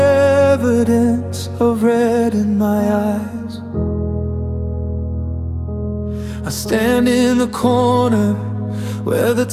of red in my eyes. I stand in the corner where the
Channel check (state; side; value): identical; both; correlation 1.00